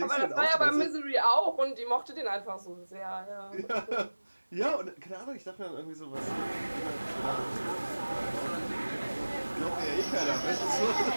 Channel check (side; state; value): both; inverted; correlation -1.00